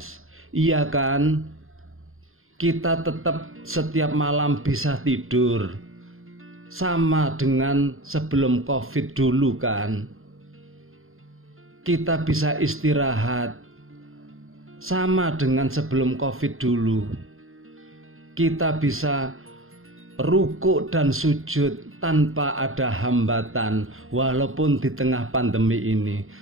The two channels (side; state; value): left; late; 0.61 ms